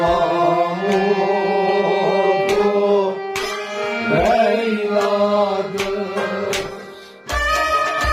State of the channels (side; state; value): both; identical; correlation 1.00